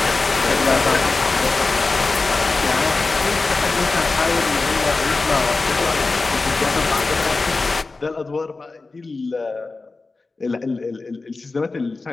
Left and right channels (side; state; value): right; quieter; 3.7 dB